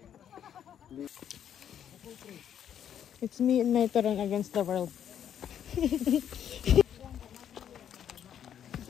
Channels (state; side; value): quieter; right; 9.4 dB